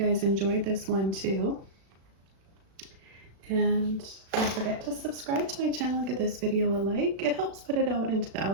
enjoyed this one too. And don't forget to subscribe to my channel and give this video a like. It helps put it out into the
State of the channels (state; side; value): late; left; 36 ms